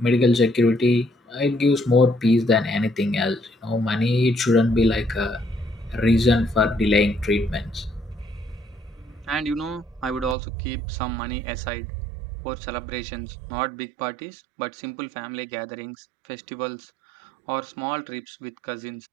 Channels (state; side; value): drops out; left; at 10.4 s